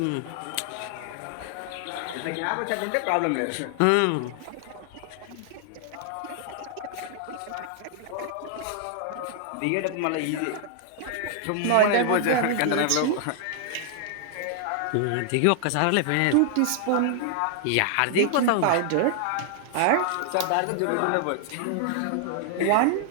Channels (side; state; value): both; different; correlation 0.00